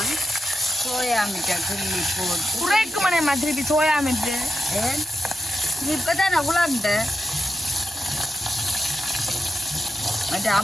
சோயா மிட்டை கிள்ளி போட்டு குறைக்குமனே திருப்பி சோயா மிட்டு இப்பதான் நான் உலாண்டேன். மற்ற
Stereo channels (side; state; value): both; normal; correlation 0.89